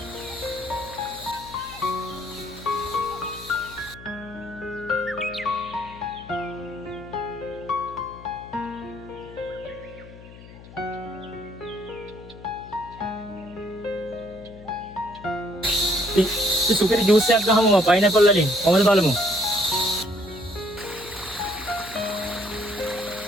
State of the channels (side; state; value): left; noise; hum, 18 dB below the sound